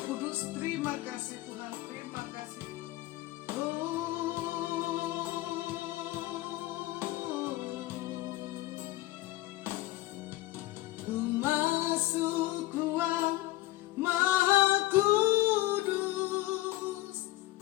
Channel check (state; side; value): quieter; right; 17.7 dB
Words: Kudus, terima kasih Tuhan, terima kasih. Ku masuk ruang Maha Kudus